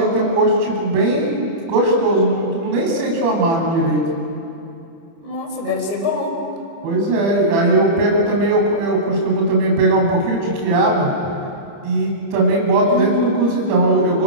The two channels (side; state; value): left; late; 30 ms